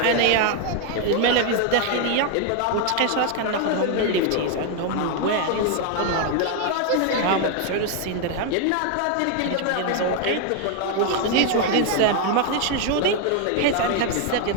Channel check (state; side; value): different; both; correlation 0.01